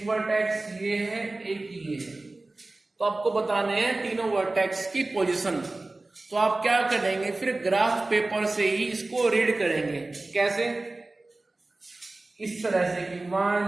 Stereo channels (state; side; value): quieter; left; 3.0 dB